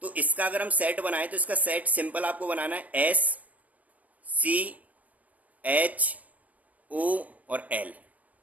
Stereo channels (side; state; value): left; late; 0.071 ms